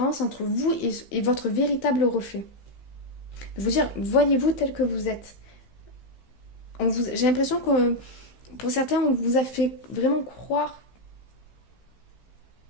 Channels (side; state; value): right; late; 15 ms